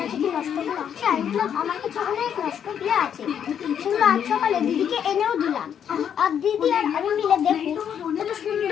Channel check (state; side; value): quieter; right; 8.6 dB